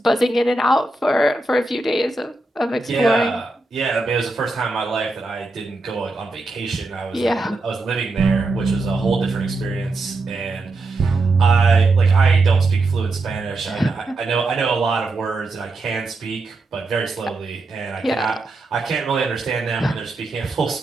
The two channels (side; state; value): left; quieter; 3.1 dB